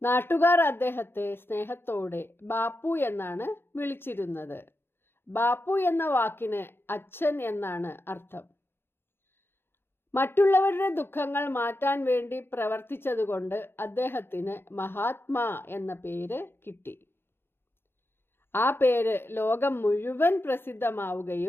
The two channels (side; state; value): right; late; 0.11 ms